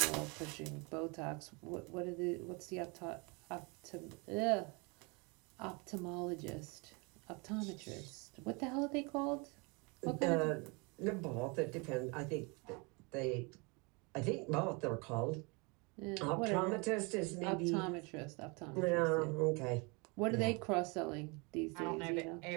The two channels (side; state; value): left; quieter; 29.9 dB